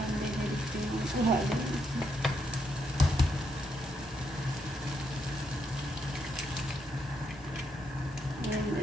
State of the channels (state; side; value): normal; both; correlation 0.78